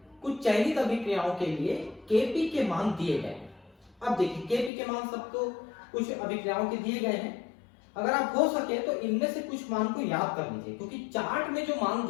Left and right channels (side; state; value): right; drops out; at 4.7 s